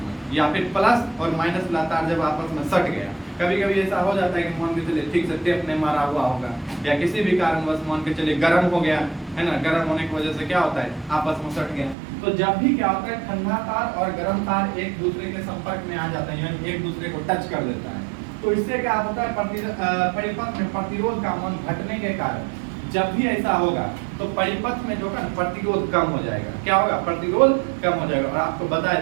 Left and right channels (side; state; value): left; drops out; at 12.0 s